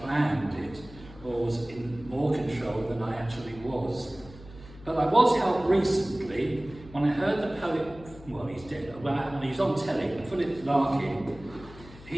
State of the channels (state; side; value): noise; left; hum, 18 dB below the sound